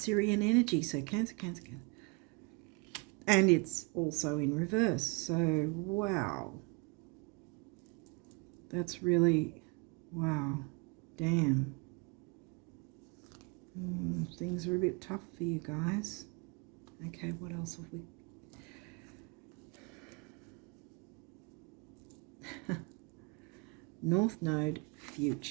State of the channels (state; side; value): quieter; left; 30.8 dB